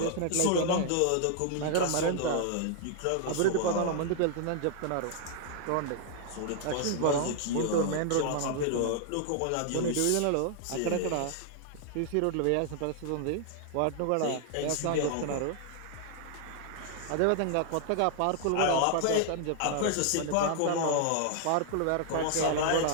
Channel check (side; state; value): both; different; correlation 0.00